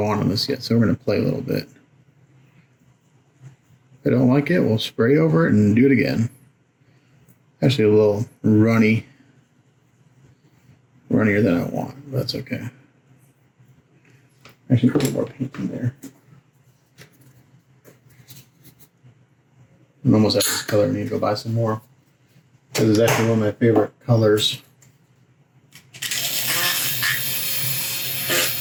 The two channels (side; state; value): both; identical; correlation 1.00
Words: on this yet, so we're gonna play a little bit. If I don't like it, we'll spray over it and do it again. Actually a little runnier than I want, but that's okay. Actually, put a little more paint in there. I'm almost out of this color. I need to go buy some more. This is actually one of my favorite colors.